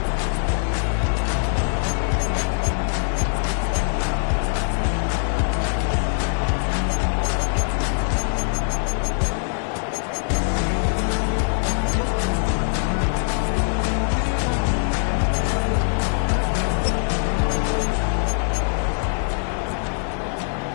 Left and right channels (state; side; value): silent; right; digital silence